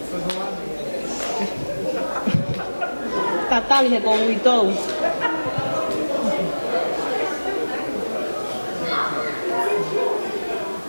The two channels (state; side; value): inverted; both; correlation -1.00